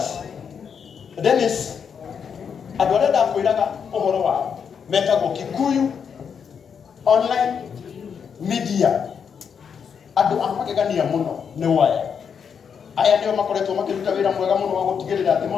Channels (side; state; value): right; quieter; 6.9 dB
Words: Dennis adoreda kwiraga ohoro wa metago Kikuyu online media adu amakegania muno ne waya aya ndio makoretwo makiruta wira mwega muno wa gutigirira ati